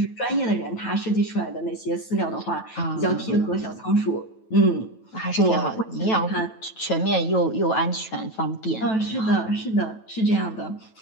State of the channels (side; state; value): right; late; 9.1 ms